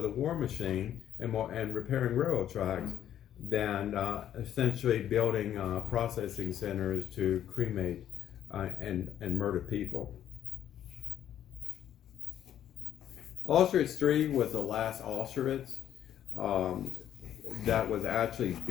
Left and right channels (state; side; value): quieter; right; 10.7 dB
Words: war machine and repairing railroad tracks than essentially building processing centers to cremate and murder people. Auschwitz III was the last Auschwitz that was actually